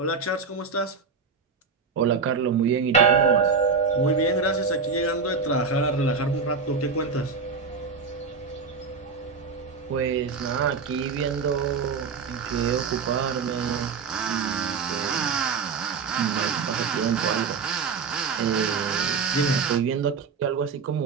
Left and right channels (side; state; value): left; quieter; 5.1 dB